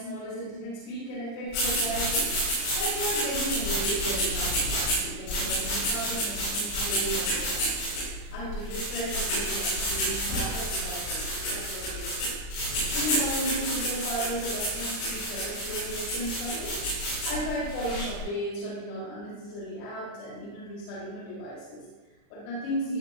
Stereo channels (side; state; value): right; late; 39 ms